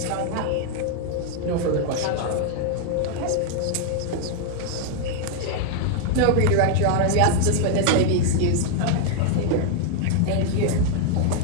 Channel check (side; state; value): both; different; correlation 0.00